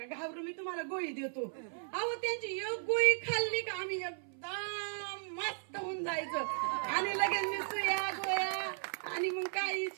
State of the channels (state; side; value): silent; left; 54 dB below the other